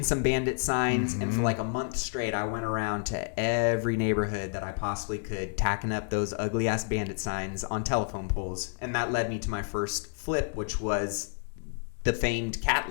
some bandit signs, and for like a month straight, I went around to every neighborhood that I possibly could, tacking up those ugly ass bandit signs on telephone poles. And that led me to my first flip, which was the famed cat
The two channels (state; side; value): silent; right; digital silence